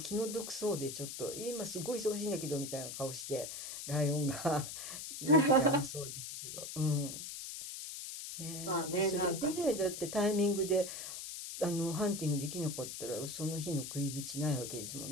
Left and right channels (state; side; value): noise; left; hiss, 8 dB below the sound